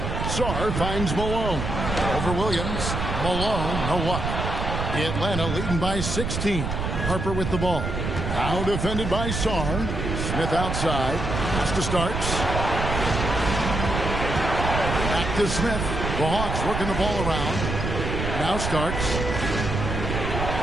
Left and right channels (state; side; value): noise; right; rumble, 3 dB below the sound